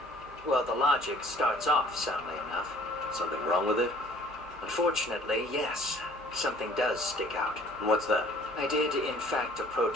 Well, the logic starts off soundly enough. Something wrong with it? Unfortunately, yes. Something does stick out. And what's that? I did, in fact, approach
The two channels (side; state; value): both; normal; correlation 0.54